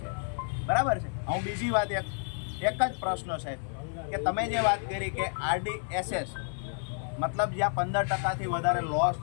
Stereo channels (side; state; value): right; silent; 56 dB below the other